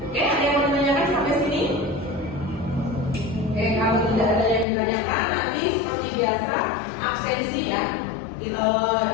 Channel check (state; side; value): drops out; right; at 4.7 s